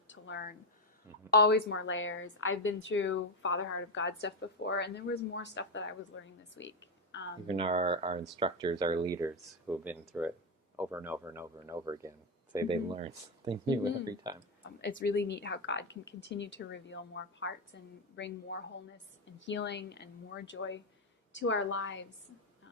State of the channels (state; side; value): normal; both; correlation 0.08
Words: to learn, always more layers. I've been through Father Heart of God stuff before, and there was more stuff that I was learning this week. Even our instructors, our leaders who have been through it over and over and over and over again, say they learn something new every time. It's really neat how God can continue to reveal more parts and bring more wholeness and healing and more joy to our lives,